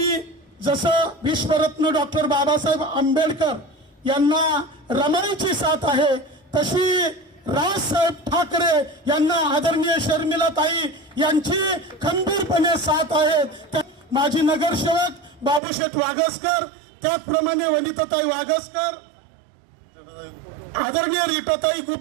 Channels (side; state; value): left; drops out; at 15.6 s